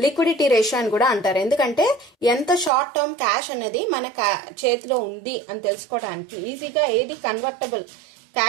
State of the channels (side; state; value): left; drops out; at 2.7 s